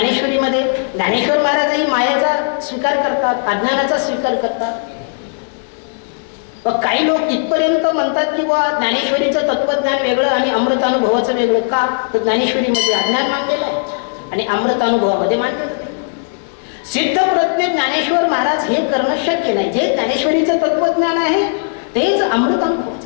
ज्ञानेश्वर महाराजही मायाचा स्वीकार करतात, अज्ञानाचा स्वीकार करतात. काही लोक इथपर्यंत म्हणतात की ज्ञानेश्वरीचं तत्वज्ञान वेगळं आणि अमृतानुभवाचं वेगळं. का, तर ज्ञानेश्वरीमध्ये अज्ञान मांडलेलं आहे आणि अमृतानुभवामध्ये मांडलेलं आहे. सिद्ध प्रज्ञ ज्ञानेश्वर महाराज हे करणं शक्य नाही. जे ज्ञानेश्वरीचं तत्वज्ञान आहे तेच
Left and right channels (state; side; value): silent; right; digital silence